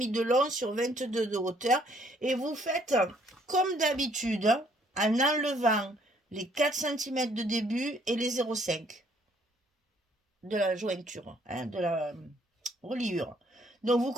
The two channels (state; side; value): normal; both; correlation 0.64